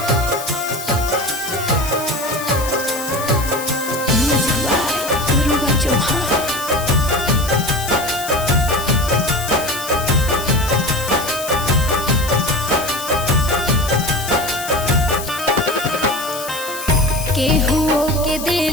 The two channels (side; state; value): left; noise; hiss, 10 dB below the sound